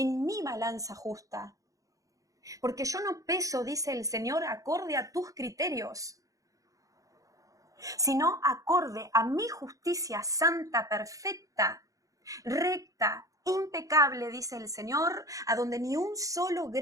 mi balanza justa. Porque yo no peso, dice el Señor, acorde a tus criterios, sino acorde a mi justicia santa, perfecta, recta, impecable, dice el Señor, a donde ni un solo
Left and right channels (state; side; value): late; left; 0.16 ms